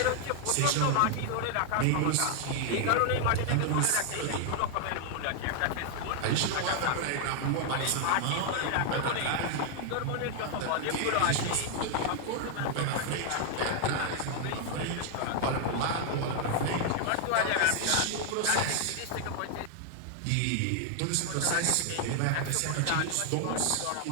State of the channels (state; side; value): different; both; correlation 0.00